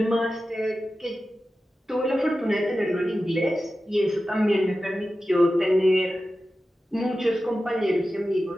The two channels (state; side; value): normal; both; correlation 0.93